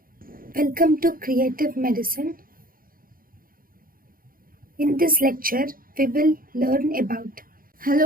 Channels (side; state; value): left; late; 0.41 ms